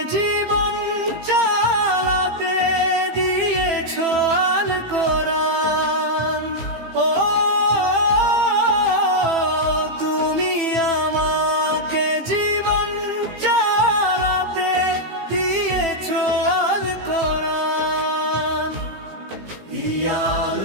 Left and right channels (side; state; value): left; late; 15 ms